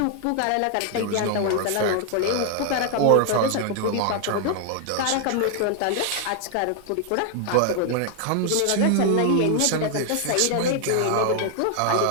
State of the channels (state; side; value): different; both; correlation 0.00